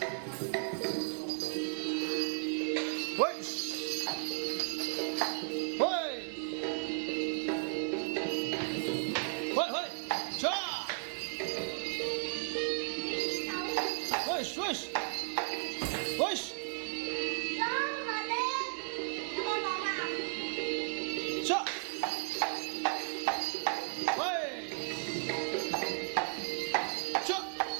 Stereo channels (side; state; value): left; silent; digital silence